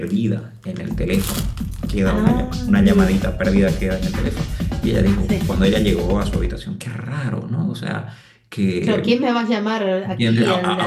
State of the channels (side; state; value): both; identical; correlation 1.00